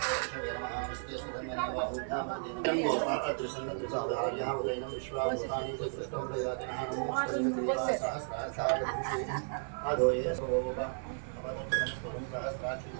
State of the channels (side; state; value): left; silent; 55 dB below the other